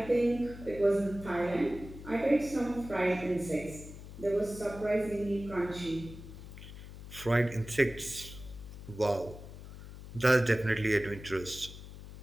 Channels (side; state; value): left; noise; hum, 14 dB below the sound